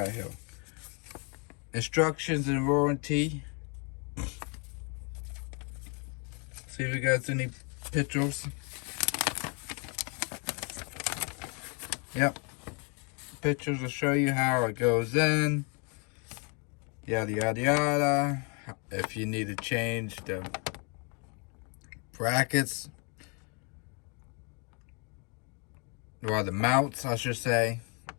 here? Instructions and warranty. See if we got any pictures. Yep. Pictures will show you how it goes in. Yada yada yada. If you need to change the brackets, or the mounts, I should say,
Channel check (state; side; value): quieter; right; 35.1 dB